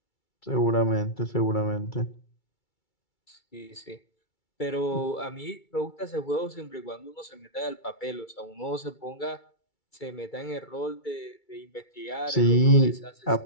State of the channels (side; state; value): right; late; 2.3 ms